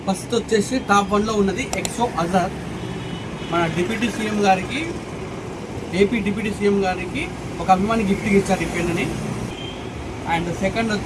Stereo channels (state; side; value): identical; both; correlation 1.00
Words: ఫస్ట్ వచ్చేసి టాప్ 1లో ఉన్నది ఎక్సో అజర్. మన డిప్యూటీ సీఎం గారికి, ఏపీ డిప్యూటీ సీఎం గారికి ఒక అభిమాని గిఫ్ట్గా ఇచ్చారు ఈ పెన్నుని. అండ్ సెకండ్